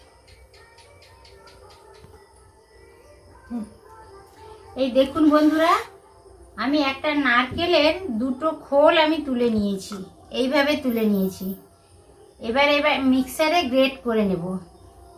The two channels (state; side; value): identical; both; correlation 1.00